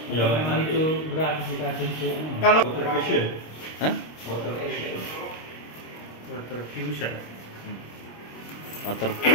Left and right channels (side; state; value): right; late; 26 ms